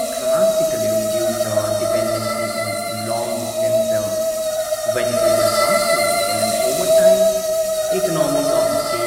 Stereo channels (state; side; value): identical; both; correlation 1.00